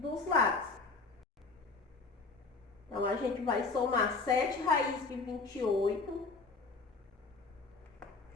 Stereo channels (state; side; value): quieter; right; 4.0 dB